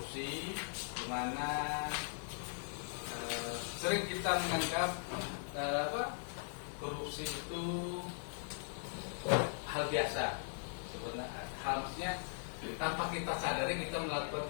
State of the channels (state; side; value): silent; right; digital silence